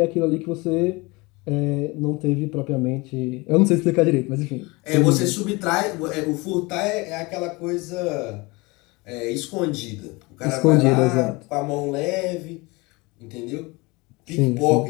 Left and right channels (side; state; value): right; quieter; 24.8 dB